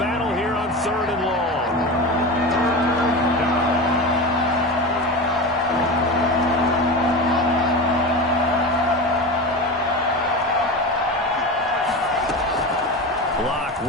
here on 3rd and long. Locke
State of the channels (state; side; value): normal; both; correlation 0.25